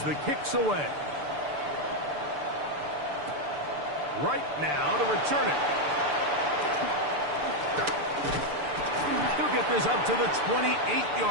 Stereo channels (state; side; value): late; left; 6.8 ms